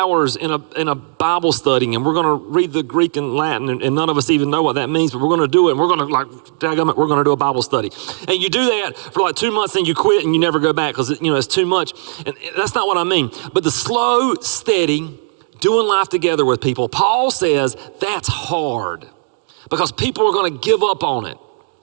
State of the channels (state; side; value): quieter; left; 36.5 dB